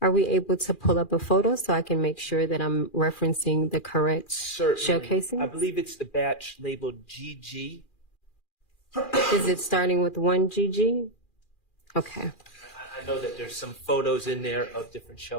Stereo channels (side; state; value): right; late; 2.4 ms